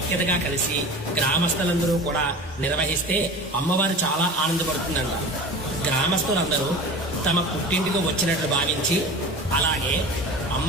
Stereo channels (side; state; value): both; normal; correlation 0.35